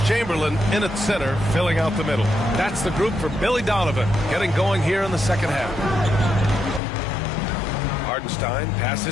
Chamberlain in at center, filling out the middle. That's the group for Billy Donovan, getting going here in the second half. Hardenstein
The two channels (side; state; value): right; drops out; at 6.8 s